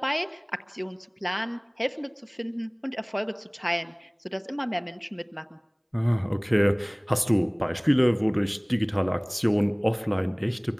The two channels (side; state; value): both; identical; correlation 1.00